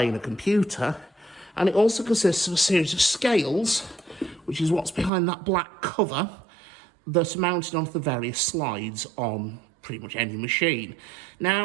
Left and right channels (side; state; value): left; drops out; at 5.1 s